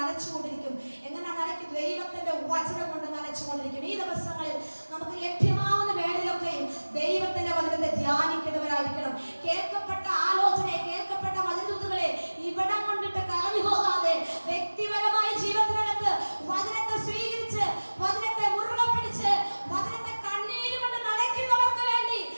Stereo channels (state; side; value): inverted; both; correlation -1.00